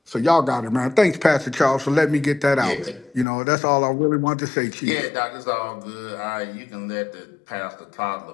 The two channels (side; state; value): right; drops out; at 3.2 s